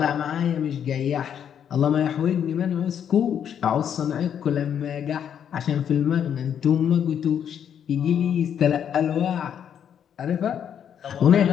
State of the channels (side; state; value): right; quieter; 8.7 dB